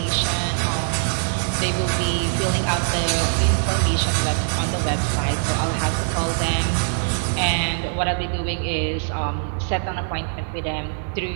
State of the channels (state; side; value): silent; left; 64 dB below the other